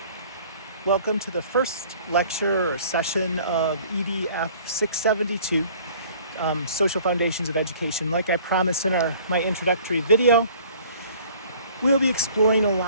Welcome to the first lecture or session of EDF 672, Social Foundations of Education. Like I promised in my introductory video, we'll be exploring a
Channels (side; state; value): both; inverted; correlation -0.52